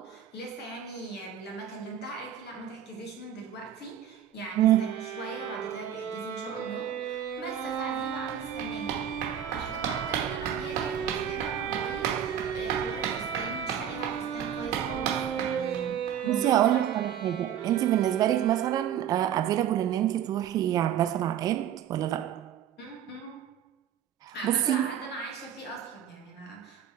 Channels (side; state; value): left; quieter; 9.7 dB